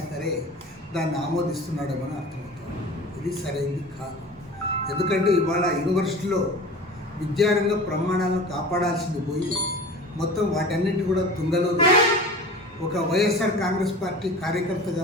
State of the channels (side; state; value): both; normal; correlation 0.37